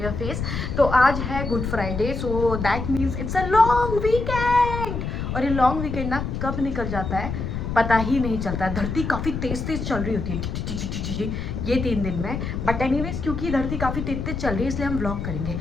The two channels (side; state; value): left; noise; rumble, 4 dB below the sound